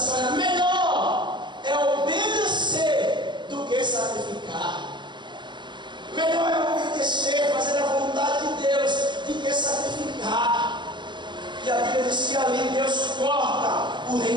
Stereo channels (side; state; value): left; late; 0.22 ms